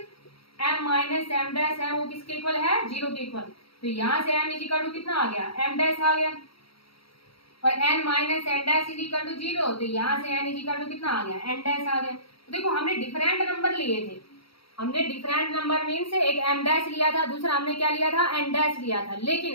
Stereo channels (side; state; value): right; late; 0.75 ms